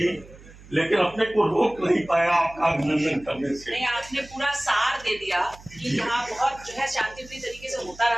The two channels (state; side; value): noise; right; hum, 21 dB below the sound